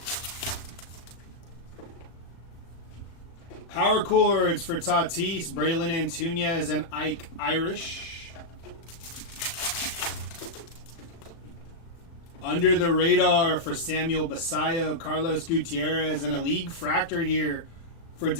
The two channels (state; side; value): late; right; 36 ms